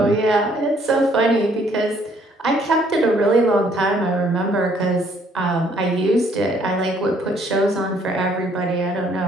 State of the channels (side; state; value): both; normal; correlation 0.64